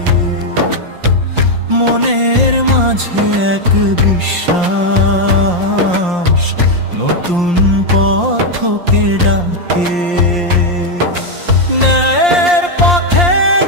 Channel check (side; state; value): left; late; 5.7 ms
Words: মনের মাঝে এক বিশ্বাস নতুন পথকে ডাকে। ন্যায়ের পথে